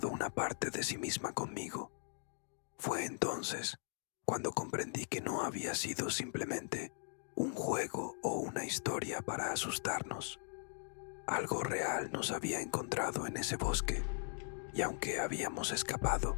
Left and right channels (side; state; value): right; silent; digital silence